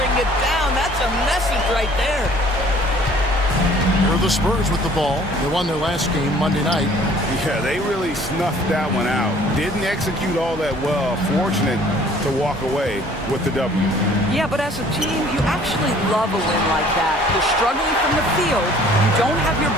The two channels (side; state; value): both; normal; correlation 0.54